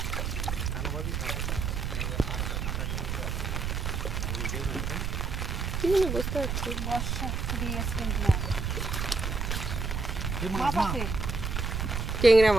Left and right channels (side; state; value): right; noise; rumble, 1 dB below the sound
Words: কি জানি বুঝতে পারছি। বর্ষা দিয়ে গেছে কিন্তু না। এই মাছ মাছ না, আছে। টেংরা